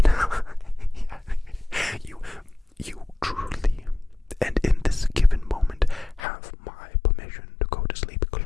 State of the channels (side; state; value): right; drops out; at 6.2 s